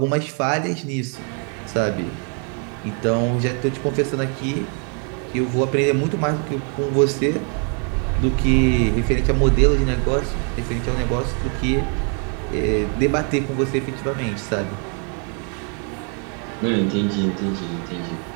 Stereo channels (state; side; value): quieter; left; 40.0 dB